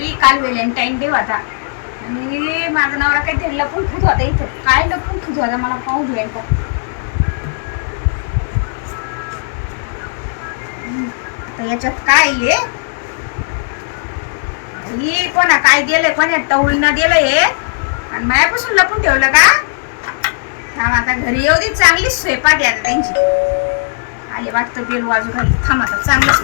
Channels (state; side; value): silent; right; digital silence